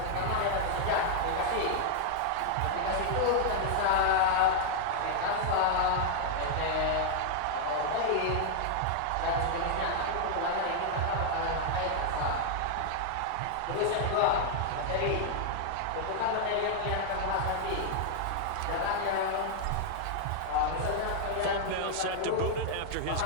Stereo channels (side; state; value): both; different; correlation -0.01